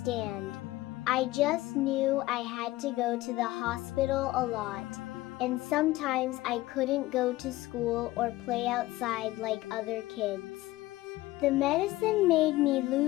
I just knew I had to go to the hospital a lot, and sometimes I couldn't go to school or play outside like other kids. The medicine made me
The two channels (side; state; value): right; quieter; 17.8 dB